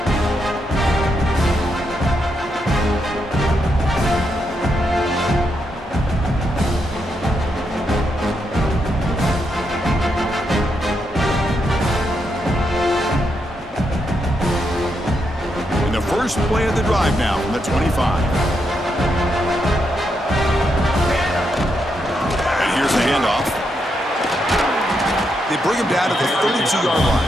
First play of the drive now from the 25. And here's the handoff. They bring him down to the 32-yard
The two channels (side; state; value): both; normal; correlation 0.81